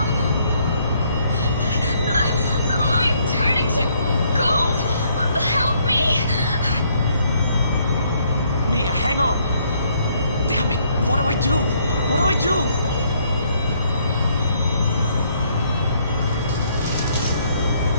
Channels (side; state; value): both; inverted; correlation -0.68